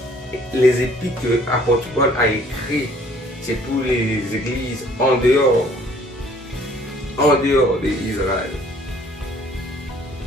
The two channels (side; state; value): both; normal; correlation 0.58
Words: les épîtres que l'apôtre Paul a écrit, c'est pour les églises en dehors d'Israël.